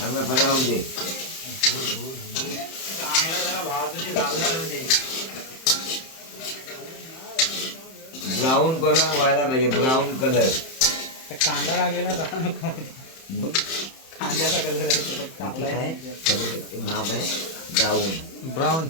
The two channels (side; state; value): right; late; 31 ms